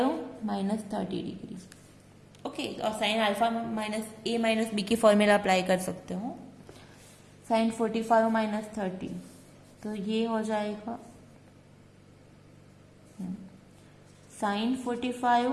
माइनस 30 डिग्री। ओके, और sin alpha minus a minus b की फॉर्मूला अप्लाई कर सकते हो। sin 45 माइनस 30, तो ये हो जाएगा sin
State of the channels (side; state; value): both; identical; correlation 1.00